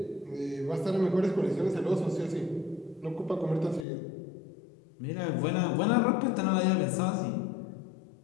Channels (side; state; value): right; drops out; at 3.9 s